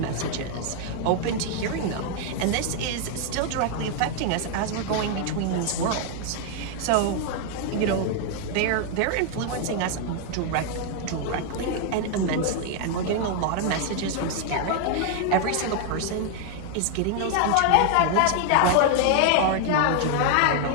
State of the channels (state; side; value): different; both; correlation 0.00